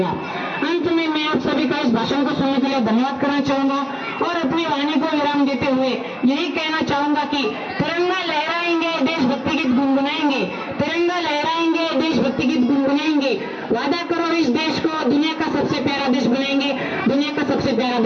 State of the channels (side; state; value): both; identical; correlation 1.00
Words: अंत में मैं आप सभी का इस भाषण को सुनने के लिए धन्यवाद करना चाहूंगा और अपनी वाणी को विराम देते हुए यही कहना चाहूंगा कि तिरंगा लहराएंगे, देशभक्ति गीत गुनगुनाएंगे, तिरंगा लहराएंगे, देशभक्ति गीत गुनगुनाएंगे। वादा करो इस देश को दुनिया का सबसे प्यारा देश बनाएंगे, दुनिया का सबसे प्यारा